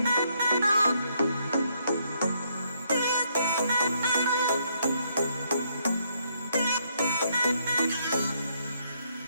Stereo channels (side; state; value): both; inverted; correlation -0.72